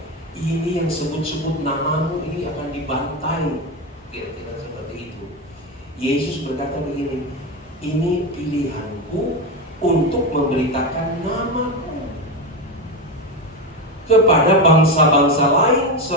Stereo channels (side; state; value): both; normal; correlation 0.15